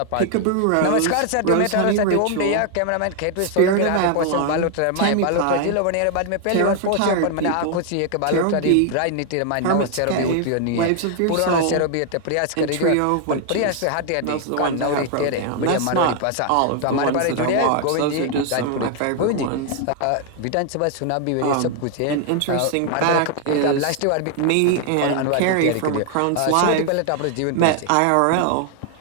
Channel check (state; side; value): different; both; correlation 0.00